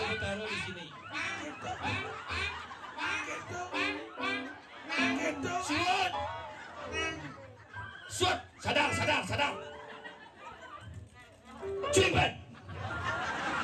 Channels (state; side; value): identical; both; correlation 1.00